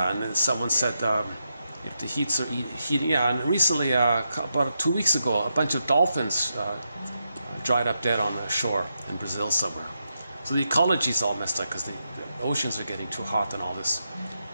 and then someone said if the heats are heating, yeah, and recently, about 2 weeks ago, a bunch of dolphins dried up dead on the shore in Brazil somewhere. So the ecology's all messed up because the oceans are getting too hot and all this.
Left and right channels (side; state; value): both; inverted; correlation -0.85